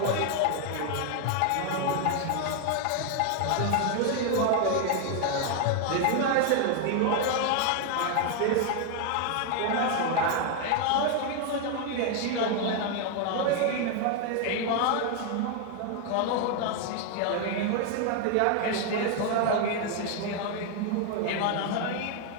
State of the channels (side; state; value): both; different; correlation 0.00